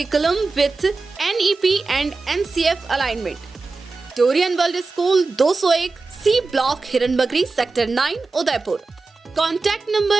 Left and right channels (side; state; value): left; quieter; 3.9 dB